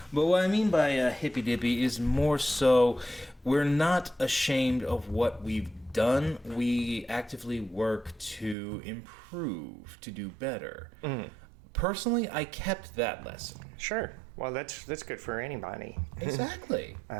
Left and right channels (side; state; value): left; drops out; at 8.6 s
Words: But what I mean by hippy-dippy is more so we're not ashamed of what we've done. We actively work to improve, to do better. Personally, I kept that lesson. Sure. Well, that's good for anybody. Exactly.